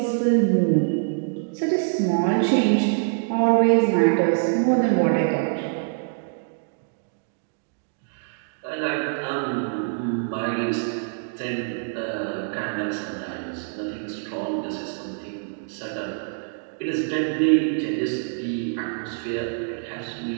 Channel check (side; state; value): left; silent; digital silence